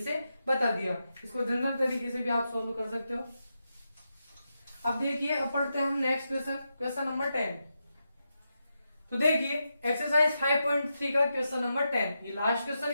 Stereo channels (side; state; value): both; inverted; correlation -0.87